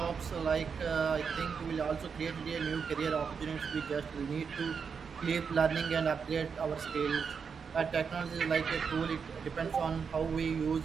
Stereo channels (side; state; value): left; quieter; 6.1 dB